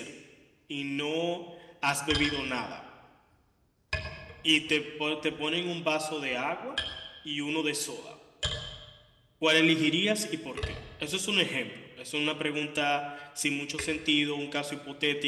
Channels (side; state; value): both; identical; correlation 1.00